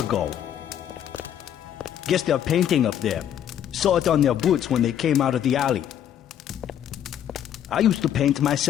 Guess they're painting up there. Saw it on their boots when they came out of the alley. I used to paint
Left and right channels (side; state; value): right; quieter; 10.1 dB